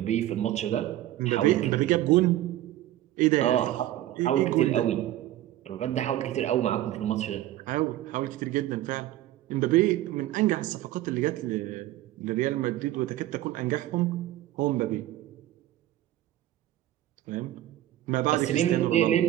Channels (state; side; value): quieter; left; 14.1 dB